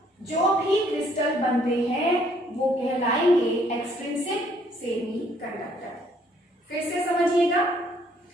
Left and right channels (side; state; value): both; normal; correlation 0.65